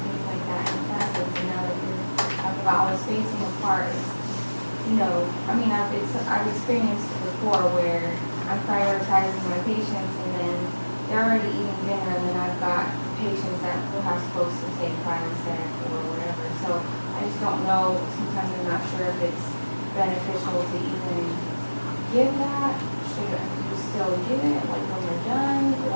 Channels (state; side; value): inverted; both; correlation -1.00